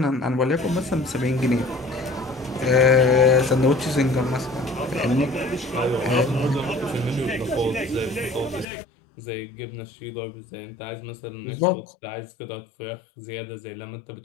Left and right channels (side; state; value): right; drops out; at 8.7 s